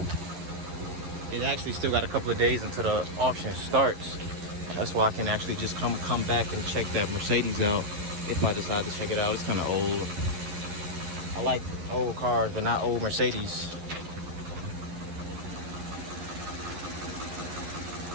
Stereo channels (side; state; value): left; late; 11 ms